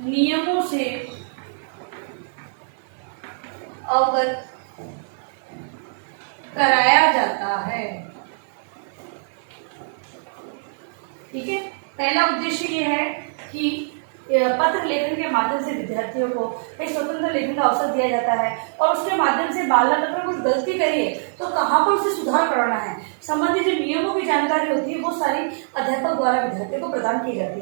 नियमों से अवगत कराया जाता है। ठीक है, पहला उद्देश्य ये है कि पत्र लेखन के माध्यम से विद्यार्थियों को एक स्वतंत्र लेखन का अवसर दिया जाता है और उसके माध्यम से बालक अगर कुछ गलती करिए तो कहाँ पर उसे सुधार करना है, संबंधित जो नियमों की जानकारी होती है वो सारी अध्यापक द्वारा विद्यार्थियों को प्रदान की जाती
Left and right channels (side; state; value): left; silent; 57 dB below the other